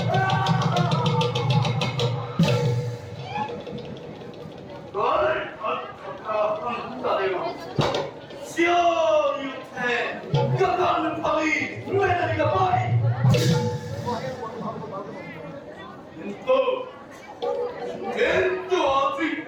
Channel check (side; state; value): both; identical; correlation 1.00